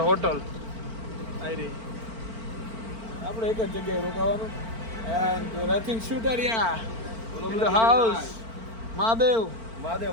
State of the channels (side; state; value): left; late; 4.4 ms